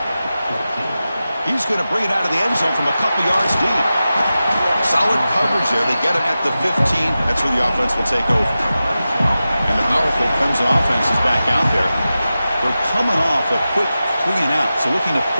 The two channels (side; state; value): both; inverted; correlation -0.94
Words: He's going to bring it out of the end zone from a couple yards deep. Solid coverage there. They get him at the 15. That's where the offense will take over. And the powerful Clemson offense is back out there. They're coming off a quick 3 and out. So looking to